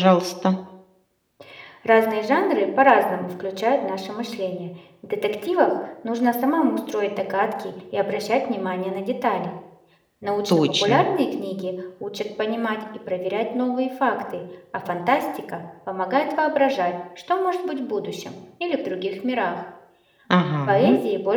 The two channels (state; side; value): identical; both; correlation 1.00